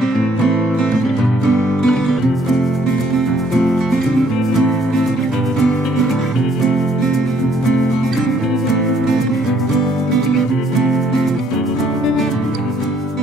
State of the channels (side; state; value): both; normal; correlation 0.65